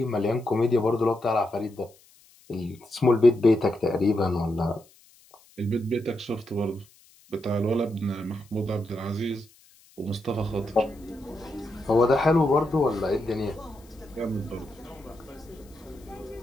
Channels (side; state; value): left; noise; hiss, 28 dB below the sound